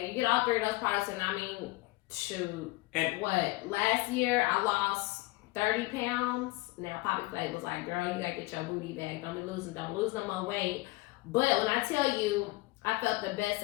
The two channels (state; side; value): quieter; right; 21.8 dB